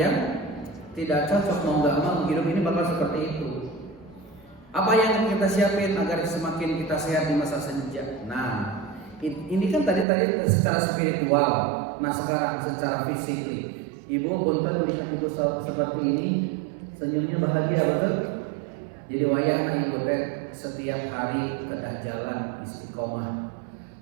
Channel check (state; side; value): drops out; left; at 10.1 s